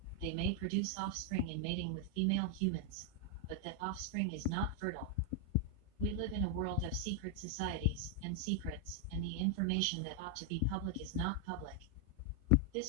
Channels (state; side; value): normal; both; correlation 0.00